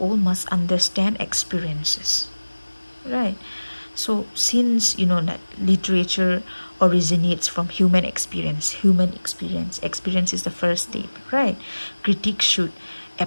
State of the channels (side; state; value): both; inverted; correlation -1.00